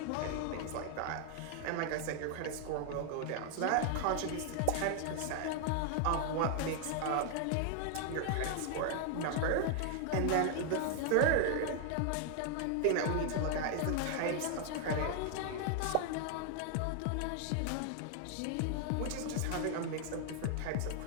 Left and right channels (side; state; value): both; different; correlation 0.00